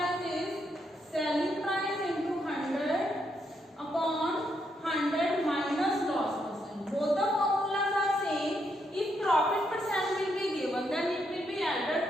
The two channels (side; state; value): both; normal; correlation 0.78